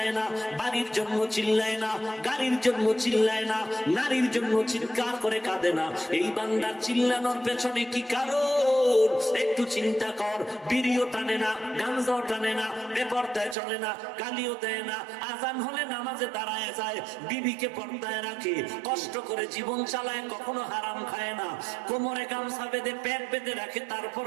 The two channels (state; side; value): drops out; left; at 13.6 s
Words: না, বাড়ির জন্য চিল্লায় না, গাড়ির জন্য চিল্লায় না, নারীর জন্য চিৎকার করে কাঁদে না। এই বান্দার চিল্লানোর পেছনে কি কারণ? একটু চিন্তা কর। বিড়িও টানে না, গাঞ্জাও টানে না, বেপরদায় চলে না, গালিও দেয় না, আজান হলে নামাজে দাঁড়ায় যায়, বিবিকে পর্দায় রাখে, কষ্ট করে জীবন চালায়, কখনো হারাম খায় না, কোমরে গামছা বেঁধে পেট বেঁধে রাখে,